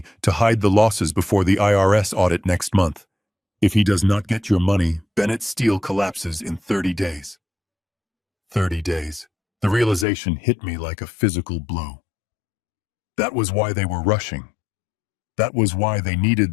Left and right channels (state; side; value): drops out; right; at 10.1 s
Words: to hide the losses before the IRS audit next month. If he does not get your money, Bennett Steel collapses in 30 days. 30 days. The realization hit me like a physical blow. That was why they were rushing. That was why they needed